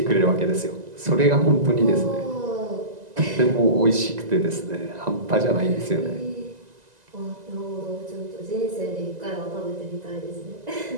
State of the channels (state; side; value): late; left; 2.0 ms